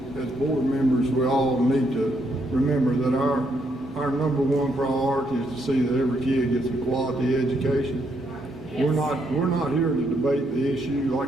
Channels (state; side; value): normal; both; correlation 0.75